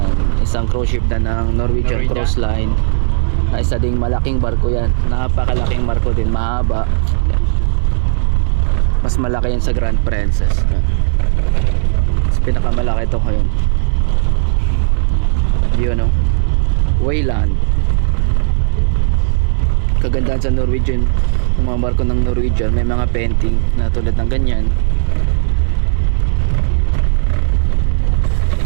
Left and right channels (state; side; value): silent; left; 70 dB below the other